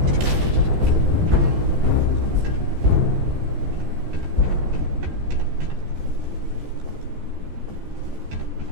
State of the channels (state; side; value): late; left; 14 ms